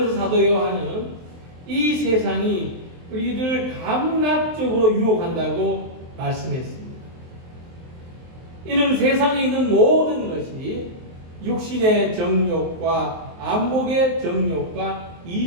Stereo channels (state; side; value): late; left; 23 ms